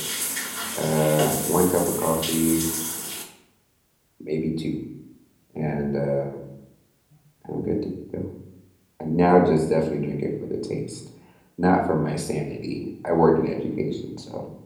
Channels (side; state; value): both; identical; correlation 1.00